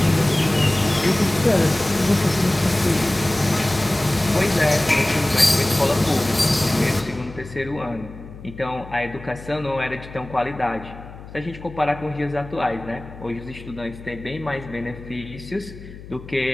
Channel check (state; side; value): noise; left; hum, 15 dB below the sound